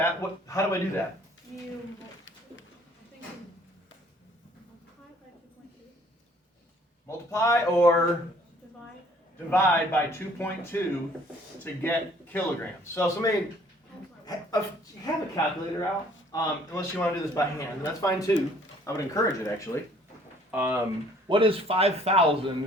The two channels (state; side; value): normal; both; correlation 0.58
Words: How do I do that? You, I think you multiply by 2.2. Multiply or Divide. divide by 2.2 to get kilograms. So somebody have a calculator out, unless you want to do this by hand. That's fine too. I would encourage it actually. What is